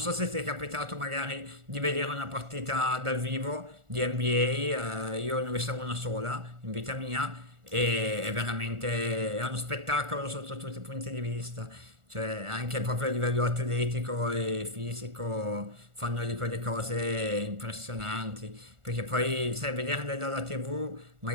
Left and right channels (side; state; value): left; late; 1.4 ms